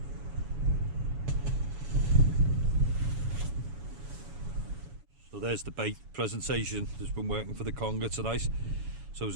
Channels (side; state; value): left; late; 7.1 ms